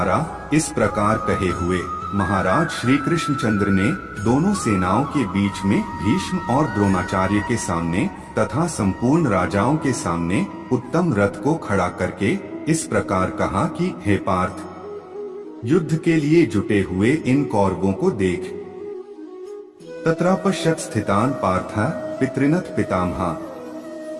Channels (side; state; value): both; identical; correlation 1.00